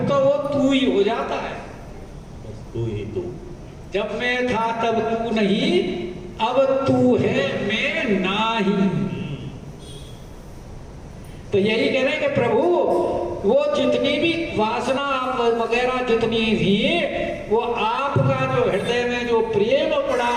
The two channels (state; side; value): identical; both; correlation 1.00